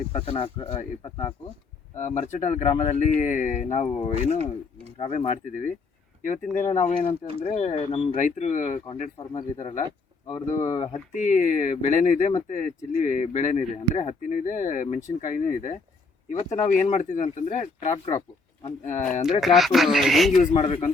ಮರ್ಚಟಾಳ ಗ್ರಾಮದಲ್ಲಿ ನಾವು ಏನು ಕಾವೇ ಮಾಡ್ತಿದ್ದೀವಿ. ಇವತ್ತಿನ ದಿನ ನಾವು ಏನಂತಂದರೆ ನಮ್ಮ ರೈತರು ಕಾಂಟ್ರಾಕ್ಟ್ ಫಾರ್ಮರ್ ಇದ್ದಾರಲ್ಲ, ಅವ್ರದ್ದು ಹತ್ತಿ ಬೆಳೆನೂ ಇದೆ ಮತ್ತು ಚಿಲ್ಲಿ ಬೆಳೆನೂ ಇದೆ, ಅಂದರೆ ಹತ್ತಿನೂ ಇದೆ, ಮೆಣಸಿನ್ಕಾಯಿನೂ ಇದೆ. ಇವತ್ತು ನಾವು ಏನು ಮಾಡ್ತಿದ್ವಿ ಅಂತಂದರೆ ಕ್ರಾಪು ಅಂದರೆ ಟ್ರ್ಯಾಪ್ ಹೆಂಗೆ ಯೂಸ್ ಮಾಡಬೇಕು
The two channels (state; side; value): quieter; right; 3.9 dB